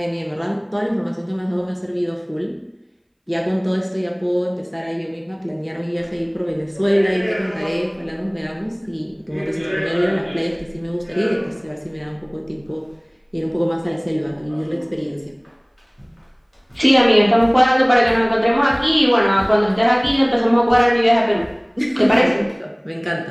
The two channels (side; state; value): both; identical; correlation 1.00